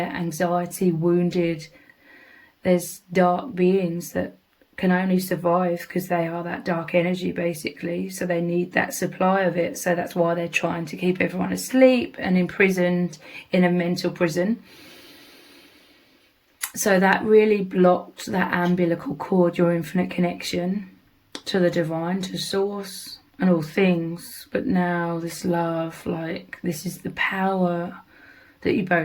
anxiety, wounded. There's dark beings that can only survive because they are that dark energy basically, so they need that supply of it. So that's why they're trying to keep everyone asleep and imprisoned in a mental prison. So that really blocked that umbilical cord, your infinite connection to the divine, to source and all things. But now this love, like, this is the power that you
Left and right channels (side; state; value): both; identical; correlation 1.00